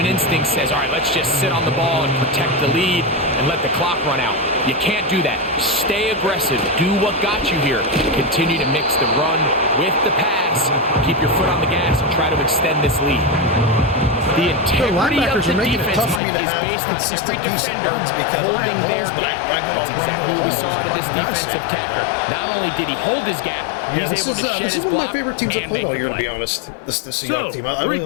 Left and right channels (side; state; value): right; drops out; at 16.2 s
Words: instinct says, all right, let's just sit on the ball and protect the lead and let the clock run out. You can't do that. Stay aggressive. Do what got you here. Continue to mix the run with the pass. Keep your foot on the gas and try to extend this lead. The integrity of the defense, Mike, is based on every defender holding their gap. That's exactly what we saw out of this defensive tackle. Not only did he hold his gap, he's able to shed his block. This is one of my favorite teams I've played all year, to be honest. This Seahawks team. I really